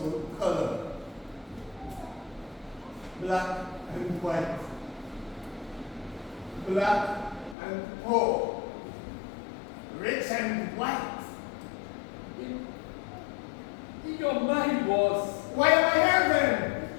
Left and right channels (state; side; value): drops out; right; at 7.6 s